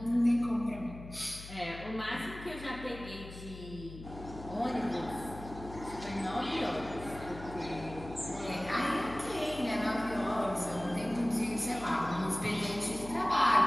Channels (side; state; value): left; noise; hum, 13 dB below the sound